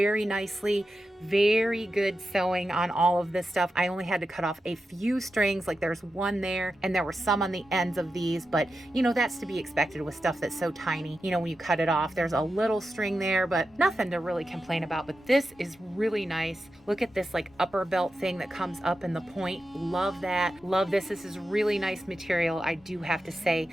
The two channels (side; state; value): both; normal; correlation 0.90